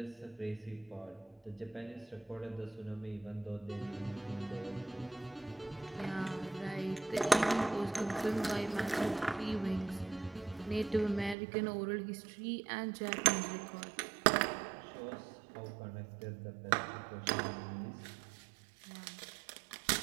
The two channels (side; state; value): left; drops out; at 11.4 s